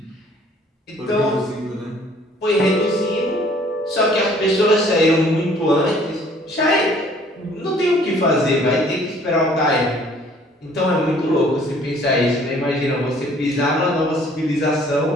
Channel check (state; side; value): normal; both; correlation 0.57